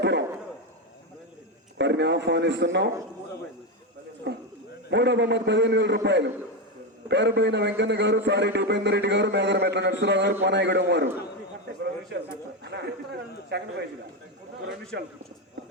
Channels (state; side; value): normal; both; correlation 0.11